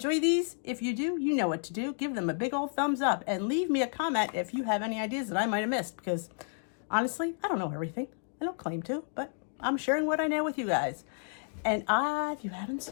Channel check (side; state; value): right; silent; 57 dB below the other